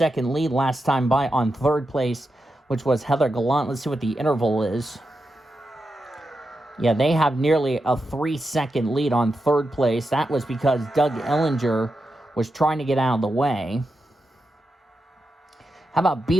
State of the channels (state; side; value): normal; both; correlation 0.88